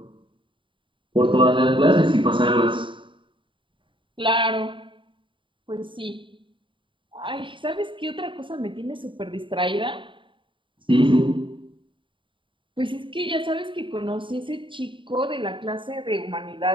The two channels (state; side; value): late; left; 0.24 ms